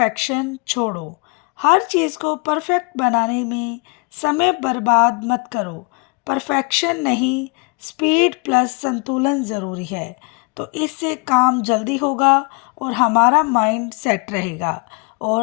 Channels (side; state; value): right; quieter; 30.5 dB